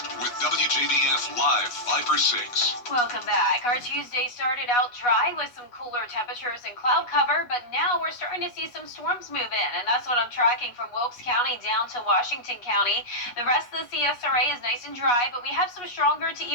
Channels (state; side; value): late; right; 8.3 ms